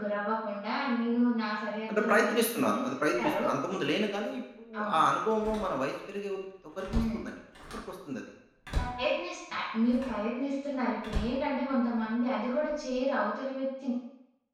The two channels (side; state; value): both; identical; correlation 1.00